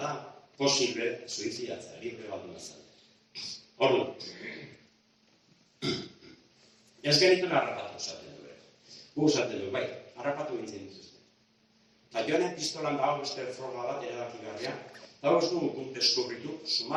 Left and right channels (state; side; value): identical; both; correlation 1.00